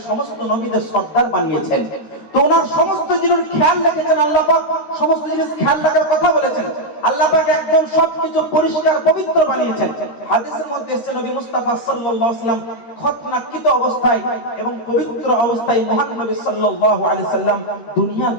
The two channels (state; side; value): late; right; 13 ms